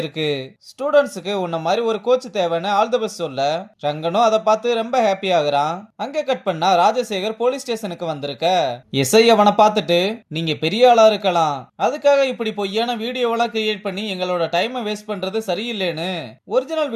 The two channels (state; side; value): identical; both; correlation 1.00